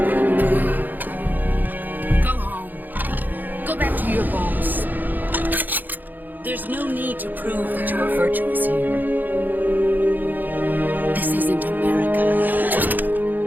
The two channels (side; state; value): left; late; 0.086 ms